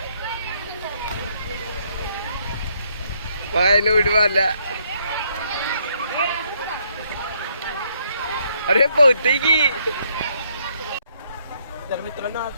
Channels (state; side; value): inverted; both; correlation -0.71